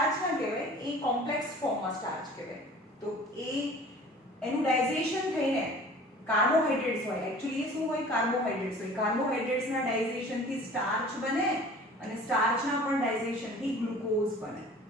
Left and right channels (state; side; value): normal; both; correlation 0.45